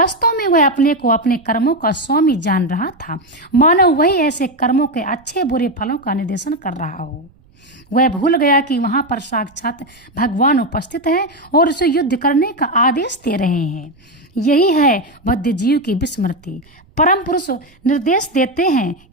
में वह अपने को अपने कर्मों का स्वामी जान रहा था, मानो वही ऐसे कर्मों के अच्छे बुरे फलों का निर्देशन कर रहा हो। वह भूल गया कि वहां पर साक्षात भगवान उपस्थित है और उसे युद्ध करने का आदेश दे रहे हैं। यही है बद्ध जीव की विस्मृति। परम पुरुष निर्देश देते हैं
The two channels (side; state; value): right; noise; rumble, 30 dB below the sound